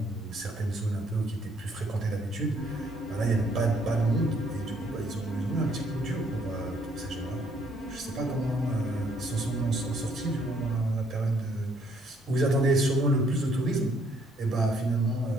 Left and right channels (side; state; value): both; normal; correlation 0.66